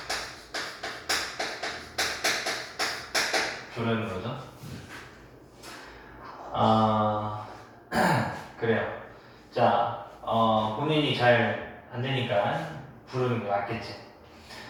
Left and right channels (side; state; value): both; identical; correlation 1.00